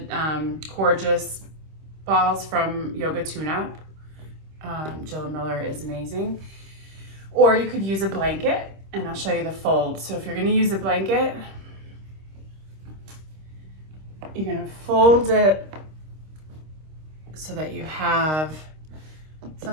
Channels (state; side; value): late; left; 26 ms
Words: gorgeous balls from Yoga Tune-Up. Jill Miller is amazing. Or you could use a blanket, and I'll show you the fold. So if you're gonna use a blanket, you're gonna fold it so that you have